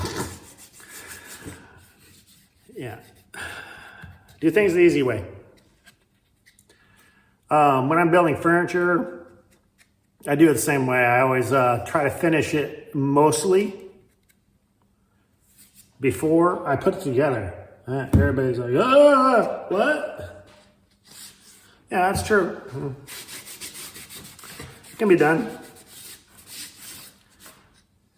Yeah. Do things the easy way. When I'm building furniture, I do it the same way. I always try to finish it mostly before I put it together. Everybody's like, oh, what? Yeah, that's true. It can be done.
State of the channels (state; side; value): identical; both; correlation 1.00